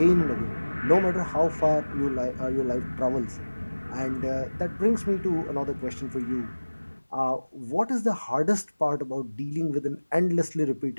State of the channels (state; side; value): inverted; both; correlation -1.00